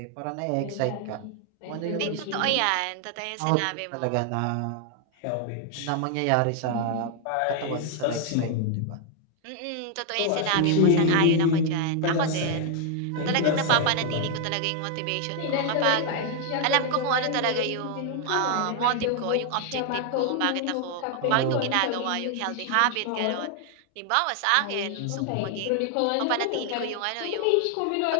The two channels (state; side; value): different; both; correlation 0.00